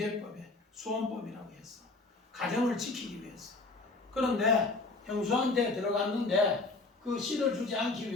수원법이라고 해서 가정을 지키기 위해서. 그런데 형수한테 들어갔는데 그 씨를 주지 않기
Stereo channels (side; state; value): right; quieter; 3.4 dB